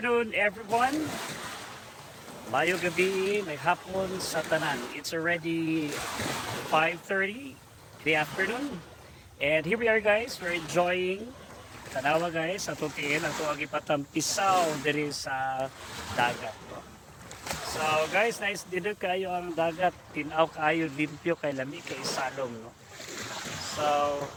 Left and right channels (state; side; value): identical; both; correlation 1.00